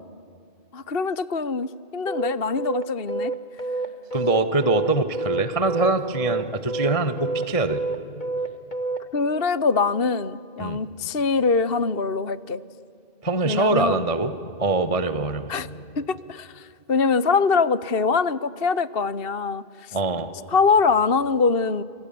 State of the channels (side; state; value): right; late; 2.7 ms